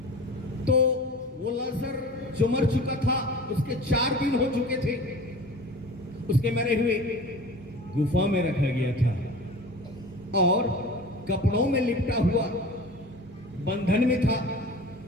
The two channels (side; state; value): both; normal; correlation 0.38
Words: तो वो लाजर जो मर चुका था, उसके 4 दिन हो चुके थे, उसके मरे हुए गुफा में रखा गया था और कपड़ों में लिपटा हुआ बंधन में था।